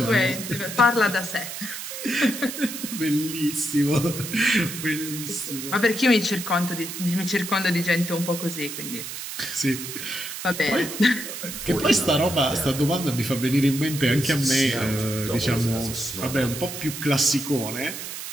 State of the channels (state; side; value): noise; right; hiss, 8 dB below the sound